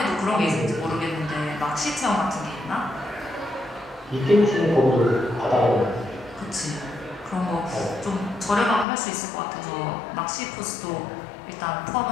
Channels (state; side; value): drops out; right; at 8.8 s